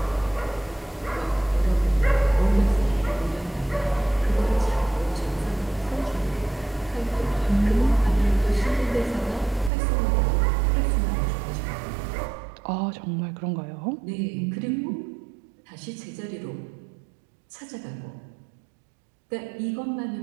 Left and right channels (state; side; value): drops out; left; at 9.7 s